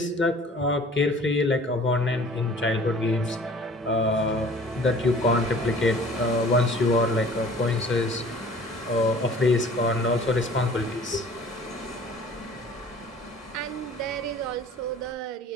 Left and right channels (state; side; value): normal; both; correlation 0.48